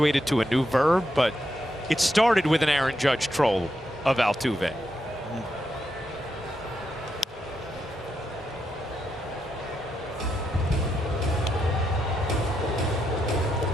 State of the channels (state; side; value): normal; both; correlation 0.82